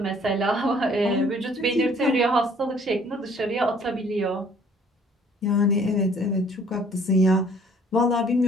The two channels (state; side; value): normal; both; correlation 0.58